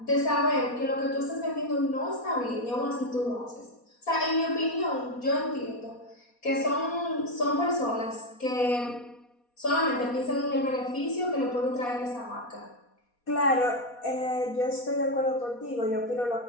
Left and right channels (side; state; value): right; late; 4.2 ms